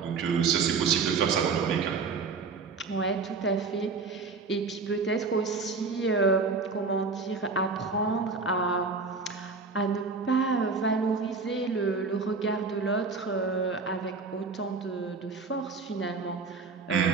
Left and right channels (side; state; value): left; quieter; 4.6 dB